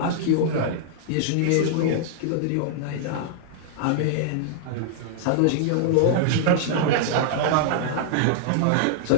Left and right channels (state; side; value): different; both; correlation -0.01